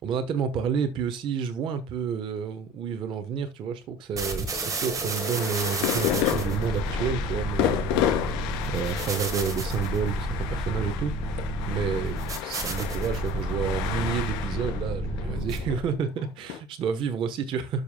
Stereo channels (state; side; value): normal; both; correlation 0.43